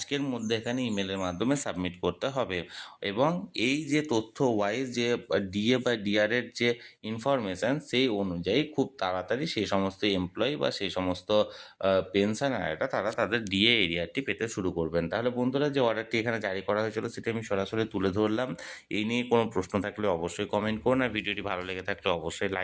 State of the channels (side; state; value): both; identical; correlation 1.00